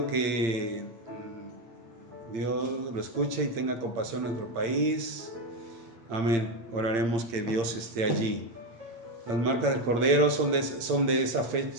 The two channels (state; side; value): late; left; 8.8 ms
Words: que Dios lo escuche y tenga compasión en nuestro país. Amén. Oraremos que Dios esté allí. Las marcas del Cordero son de esa